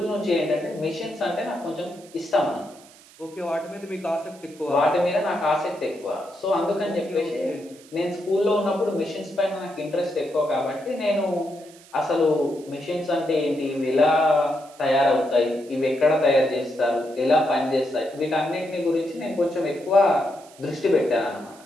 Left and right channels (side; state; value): right; noise; hiss, 24 dB below the sound